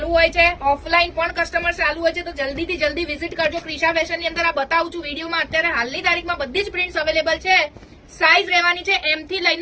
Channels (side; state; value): both; identical; correlation 1.00